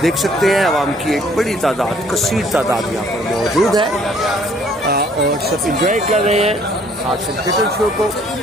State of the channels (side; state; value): both; normal; correlation 0.60